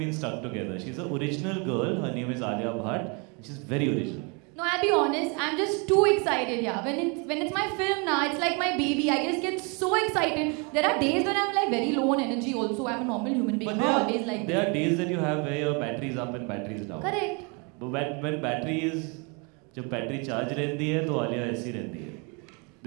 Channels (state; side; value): quieter; left; 32.9 dB